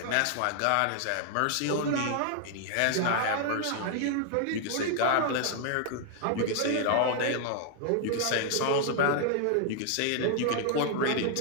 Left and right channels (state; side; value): different; both; correlation 0.00